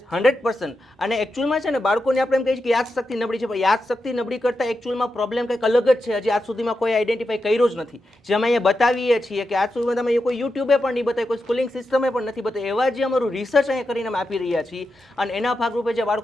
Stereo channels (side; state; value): both; normal; correlation 0.88